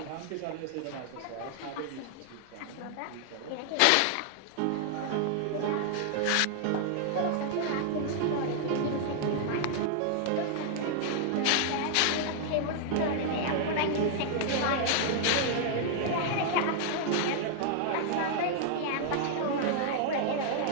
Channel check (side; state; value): both; different; correlation 0.00